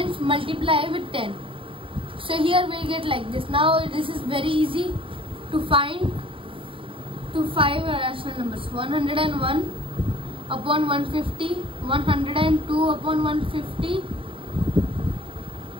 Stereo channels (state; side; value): late; left; 0.25 ms